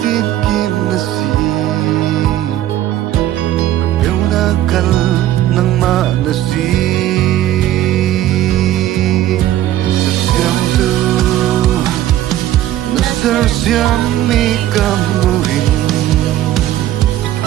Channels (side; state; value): left; quieter; 13.3 dB